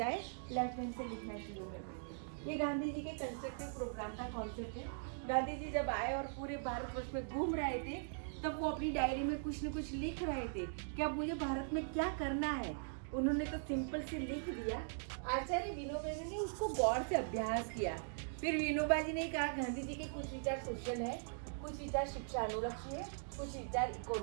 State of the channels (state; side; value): silent; left; digital silence